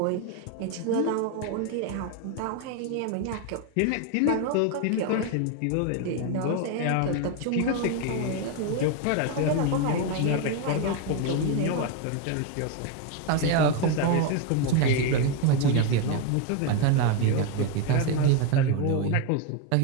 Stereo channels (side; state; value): both; different; correlation 0.02